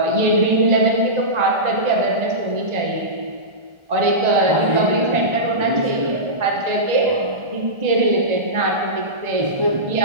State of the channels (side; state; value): left; late; 1.4 ms